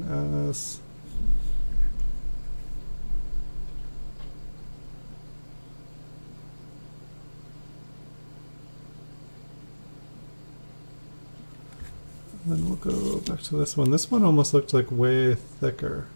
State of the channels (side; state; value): both; inverted; correlation -1.00